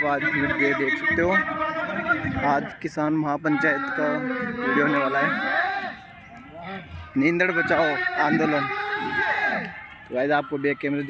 आज वीडियो देख सकते हो। आज किसान महापंचायत का वीडियो होने वाला है, नींदड़ बचाओ आंदोलन। तो गाइस आपको बैक कैमरे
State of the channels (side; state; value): both; identical; correlation 1.00